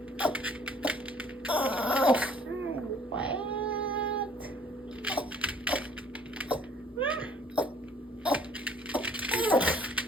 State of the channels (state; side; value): normal; both; correlation 0.57